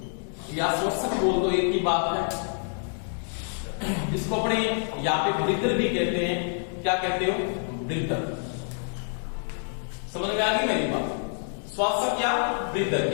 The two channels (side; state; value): right; silent; digital silence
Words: या श्वसक बोल दो, एक ही बात है। जिसको अपने यहाँ पे ब्रीदर भी कहते हैं, क्या कहते हो, ब्रीदर। समझ में आ गई मेरी बात, श्वासक या ब्रीदर,